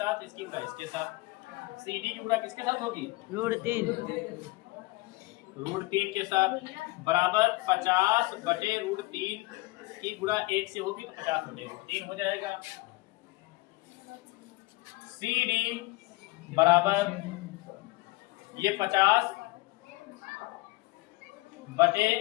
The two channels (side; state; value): right; quieter; 22.3 dB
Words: इसकी गुणा इसके साथ। CD की गुणा किसके साथ होगी? √3 √3 के साथ बराबर 50/√3 की गुणा 1 से होगी तो 50/√3 हो जाएगा। CD बराबर ये 50 बटे,